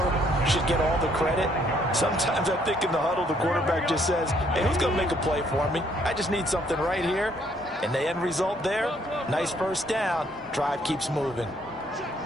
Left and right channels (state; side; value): normal; both; correlation 0.67